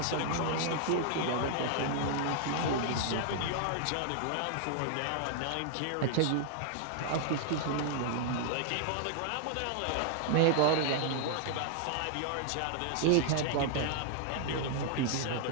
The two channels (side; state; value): both; different; correlation -0.01